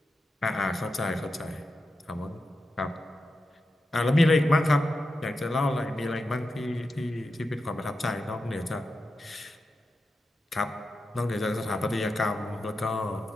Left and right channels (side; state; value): both; normal; correlation 0.90